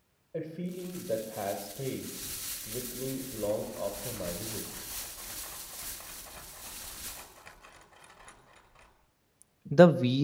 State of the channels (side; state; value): both; identical; correlation 1.00